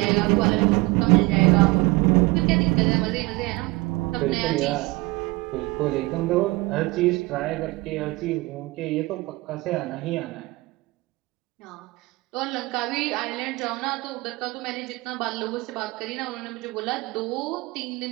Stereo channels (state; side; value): quieter; left; 23.0 dB